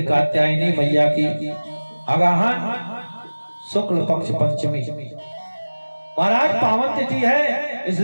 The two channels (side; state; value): both; inverted; correlation -1.00